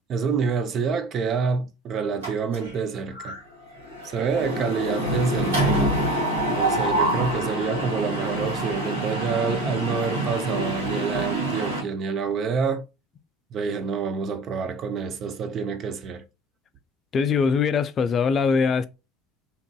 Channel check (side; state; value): both; normal; correlation 0.40